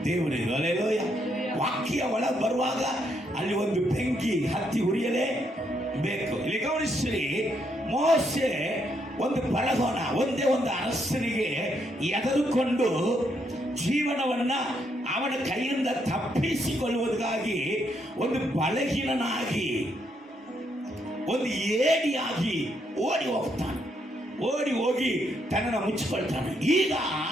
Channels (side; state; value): both; normal; correlation 0.76